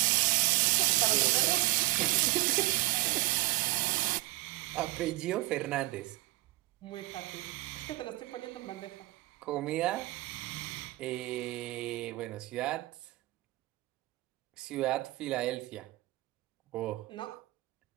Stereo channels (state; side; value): quieter; left; 20.5 dB